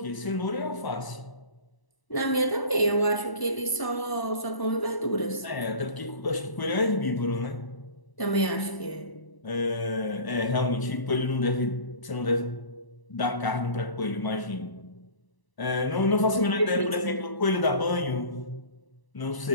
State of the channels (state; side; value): late; right; 1.0 ms